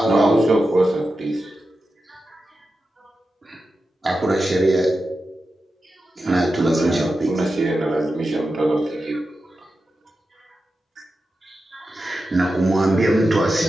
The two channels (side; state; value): both; normal; correlation 0.91